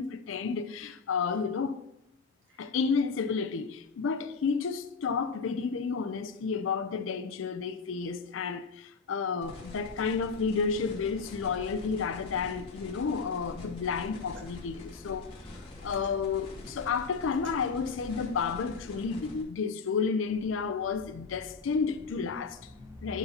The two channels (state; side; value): quieter; right; 5.1 dB